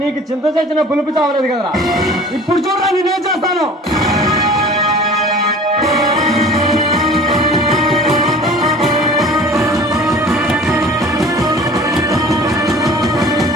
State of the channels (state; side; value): normal; both; correlation 0.44